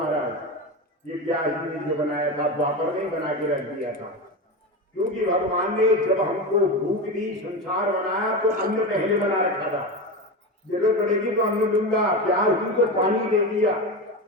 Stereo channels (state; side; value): normal; both; correlation 0.21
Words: ये व्यास जी ने जो बनाया था द्वापर ने बना के रख दिया था। क्योंकि भगवान ने जब हमको भूख दी, संसार बनाया तो अन्न पहले बना रखा था, जरूरत पड़ेगी तो अन्न दूंगा, प्यास दी तो पानी दे दिया,